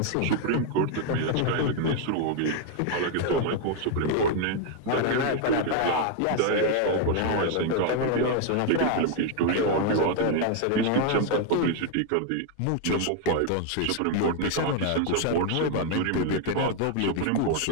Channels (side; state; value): both; different; correlation 0.01